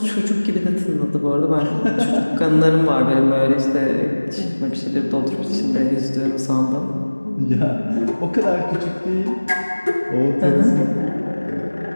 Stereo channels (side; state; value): both; inverted; correlation -1.00